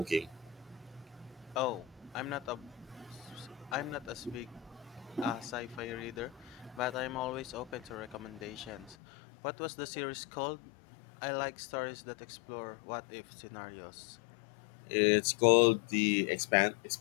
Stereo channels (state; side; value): drops out; right; at 9.0 s